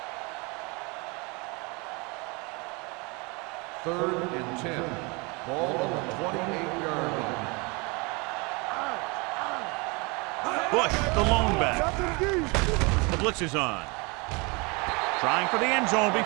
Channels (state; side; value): quieter; left; 28.7 dB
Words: Third and 10. Ball on the 28-yard line. Bush, the lone back. The blitz is on. Trying for the end zone